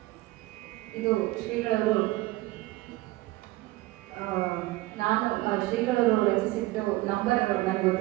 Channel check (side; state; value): left; quieter; 19.1 dB